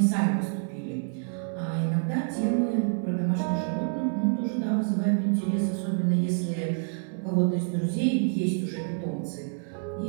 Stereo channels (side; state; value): left; silent; 60 dB below the other